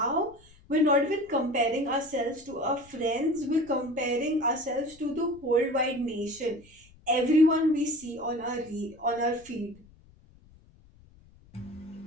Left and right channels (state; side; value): noise; left; rumble, 26 dB below the sound